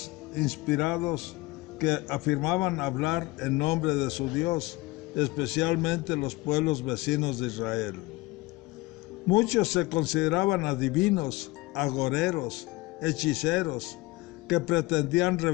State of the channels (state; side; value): quieter; right; 21.5 dB